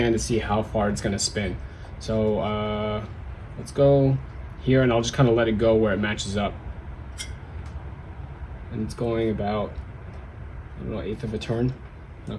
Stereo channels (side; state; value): both; identical; correlation 1.00